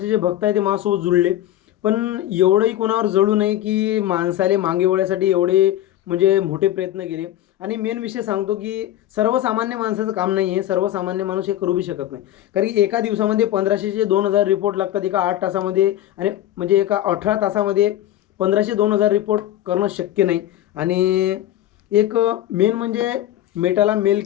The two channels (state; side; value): quieter; right; 13.1 dB